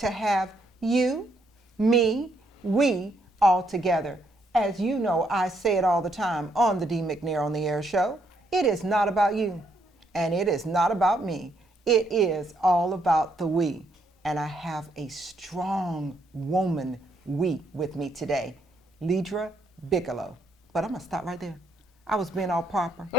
have you, me, we all together. As you know, I say it all the time on the DeeMcNair on the Air show. It is not about you, and it is not about me. It is all about the we. And I have a strong woman we with me today, Ledra Bigelow. But I'm gonna stop right there. I was being all proper.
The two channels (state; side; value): normal; both; correlation 0.73